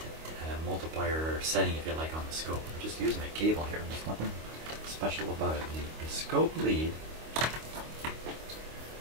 multiplier setting, if you like, on the scope. I'm just using a cable here. There's nothing special about it. The scope lead,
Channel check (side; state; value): left; late; 25 ms